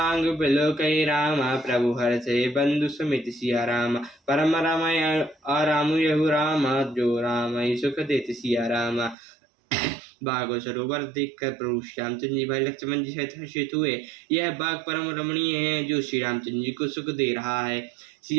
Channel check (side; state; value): left; drops out; at 9.2 s